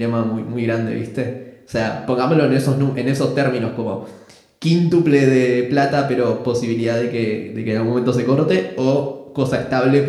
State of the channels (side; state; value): both; identical; correlation 1.00